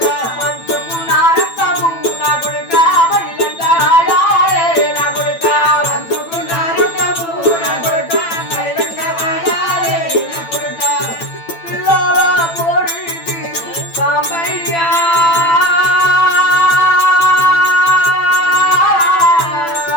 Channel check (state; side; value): late; right; 8.9 ms